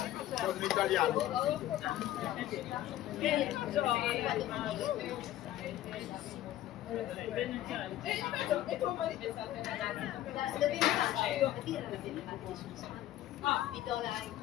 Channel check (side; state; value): right; quieter; 13.5 dB